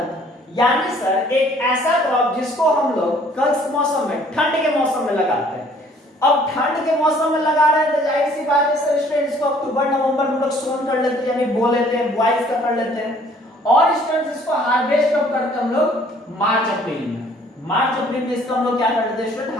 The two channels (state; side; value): normal; both; correlation 0.58